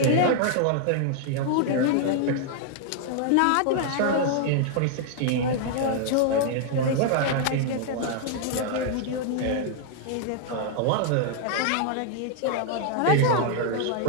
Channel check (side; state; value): both; different; correlation -0.01